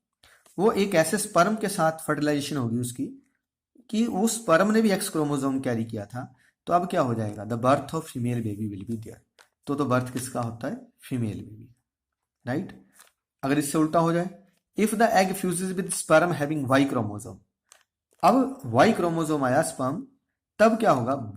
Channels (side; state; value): both; identical; correlation 1.00